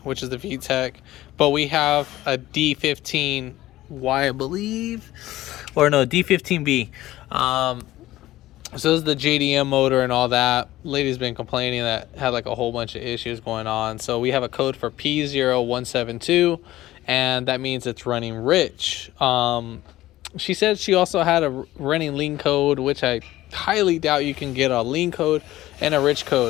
which is the VTEC, but we have a D15Y, I believe, or no, D15B. So this is the JDM motor and all that. Lady's been complaining that had like a whole bunch of issues going on. So we have a code for p0172, and that means it's running rich. She said she also had a running lean code, which I highly doubt you can get a lean code and a rich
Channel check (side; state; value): right; quieter; 15.8 dB